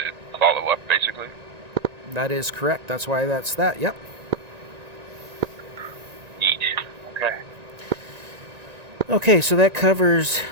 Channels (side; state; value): left; late; 1.9 ms